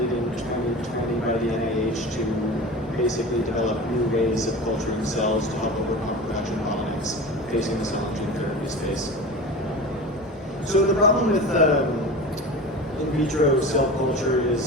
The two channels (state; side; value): normal; both; correlation 0.32